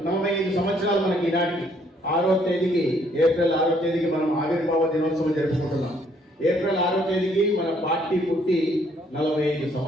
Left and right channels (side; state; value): both; normal; correlation 0.66